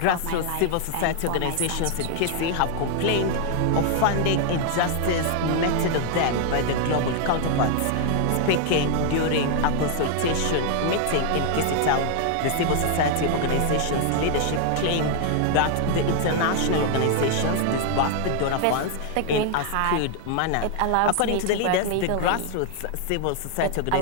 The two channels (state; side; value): different; both; correlation 0.00